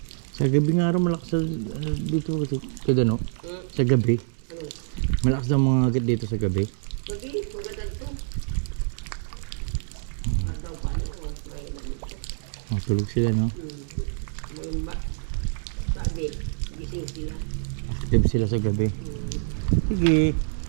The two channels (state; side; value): silent; left; 61 dB below the other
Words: Sa gabi nga rin malakas dito kasi kada no? Sa gabi. Malakas daw mga agad dito sa gabi. Gabi, magandang to. Daw pa may Oh, tulog sila no? sabi, gising sila. Active sila sa gabi. Sige.